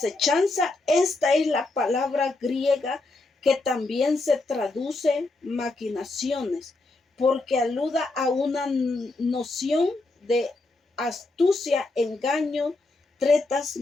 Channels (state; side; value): quieter; right; 3.2 dB